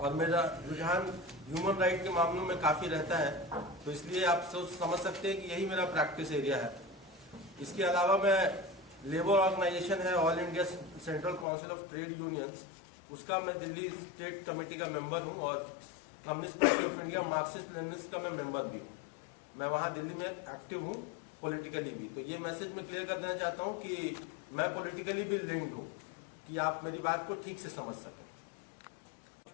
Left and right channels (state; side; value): drops out; right; at 11.5 s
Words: मेरा रुझान ह्यूमन राइट के मामलों में काफ़ी रहता है। तो इसलिए आप समझ सकते हैं कि यही मेरा प्रैक्टिस एरिया है। इसके अलावा मैं लेबर ऑर्गेनाइजेशन है all India central council of trade unions, उसका मैं दिल्ली स्टेट कमेटी का मेंबर हूँ, और communist party of India Marxist Leninist का मैं मेंबर भी हूँ। मैं वहाँ दिल्ली में एक्टिव हूँ, पॉलिटिकली भी। तो ये मैसेज मैं क्लियर कर देना चाहता हूँ कि मैं पॉलिटिकली भी लिंक्ड हूँ, कि आप मेरी बात को ठीक से समझ सकें।